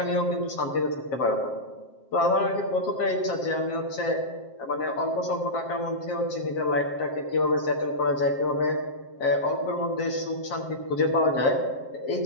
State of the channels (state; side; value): late; right; 7.6 ms